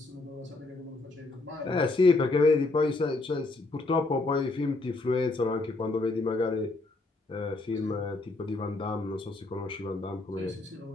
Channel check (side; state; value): right; quieter; 3.2 dB